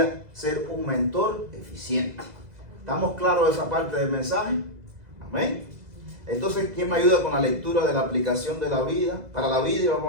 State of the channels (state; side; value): late; left; 2.0 ms